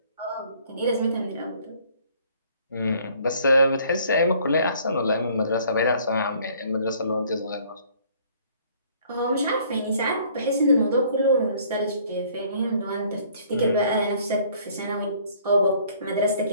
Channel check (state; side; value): inverted; both; correlation -0.59